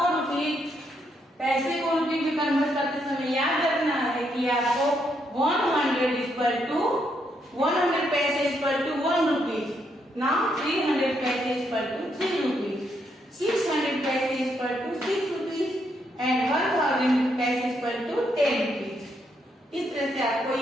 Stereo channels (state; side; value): normal; both; correlation 0.76